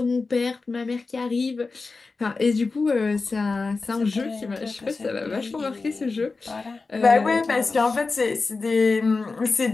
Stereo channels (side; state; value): right; quieter; 4.0 dB